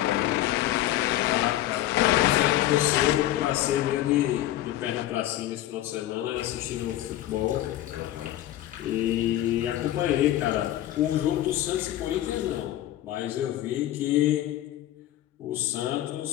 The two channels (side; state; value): right; quieter; 13.9 dB